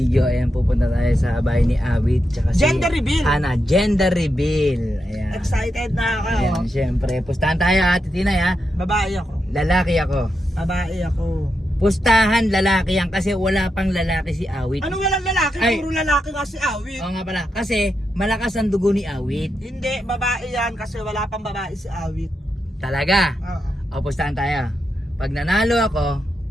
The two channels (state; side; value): normal; both; correlation 0.85